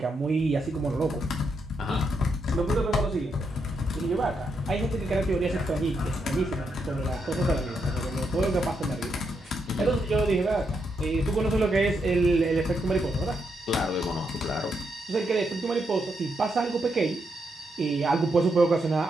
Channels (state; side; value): normal; both; correlation 0.80